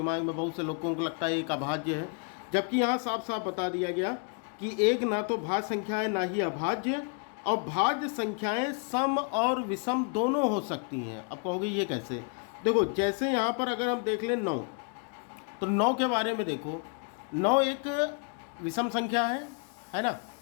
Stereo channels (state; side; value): quieter; right; 38.4 dB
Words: में बहुत से लोगों को लगता है एक अभाज्य है, जबकि यहाँ साफ साफ बता दिया गया कि 1 ना तो भाज्य संख्या है ना ही अभाज्य, और भाज्य संख्याएं सम और विषम दोनों हो सकती हैं। अब कहोगे ये कैसे? देखो जैसे यहाँ पर अगर हम देख लें 9, तो 9 के बारे में देखो। 9 एक विषम संख्या है ना।